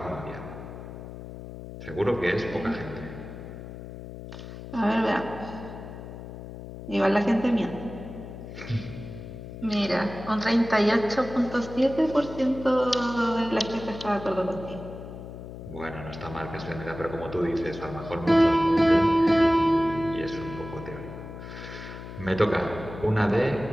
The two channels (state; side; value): noise; left; hum, 12 dB below the sound